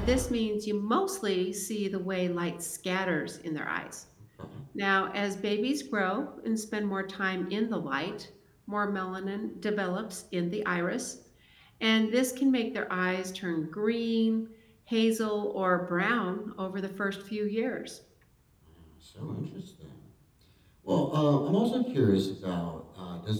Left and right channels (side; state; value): both; identical; correlation 1.00